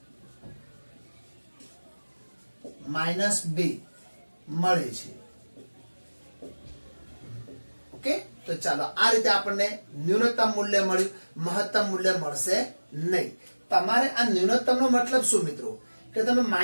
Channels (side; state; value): both; inverted; correlation -1.00